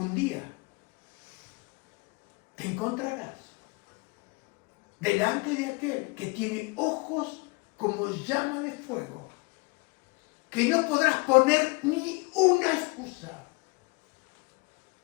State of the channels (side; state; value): right; quieter; 28.3 dB